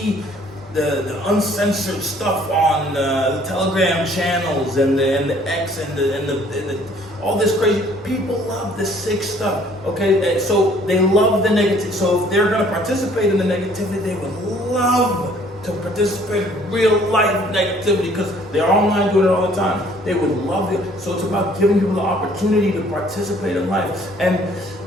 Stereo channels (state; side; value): normal; both; correlation 0.58